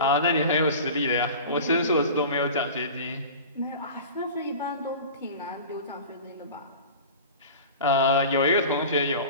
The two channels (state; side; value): inverted; both; correlation -0.36